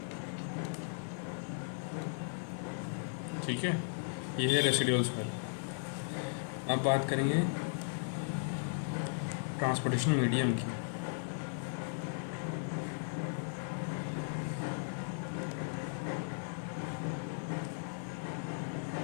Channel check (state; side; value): silent; right; digital silence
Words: ठीक है, ये है रेसिडुअल सॉइल। अब बात करेंगे ट्रांसपोर्टेशन मीडियम की।